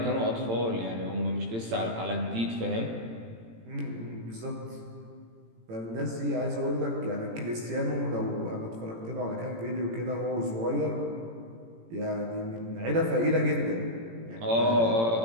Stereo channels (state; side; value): late; left; 18 ms